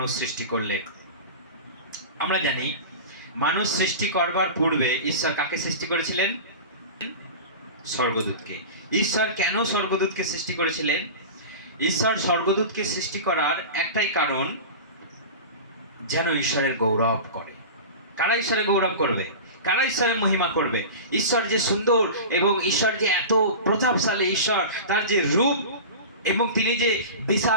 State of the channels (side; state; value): both; inverted; correlation -0.30